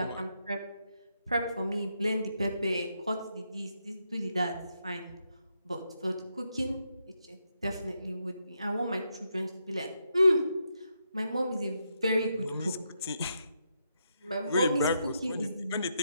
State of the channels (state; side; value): inverted; both; correlation -0.81